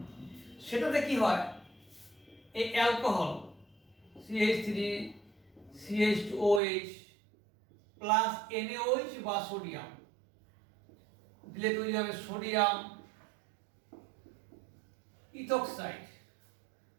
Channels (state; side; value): drops out; left; at 6.6 s